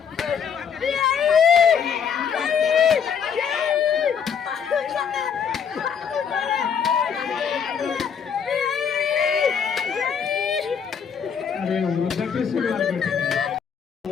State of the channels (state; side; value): quieter; right; 7.2 dB